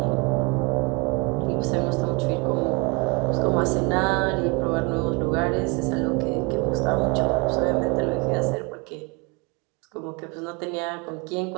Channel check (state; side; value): quieter; left; 29.0 dB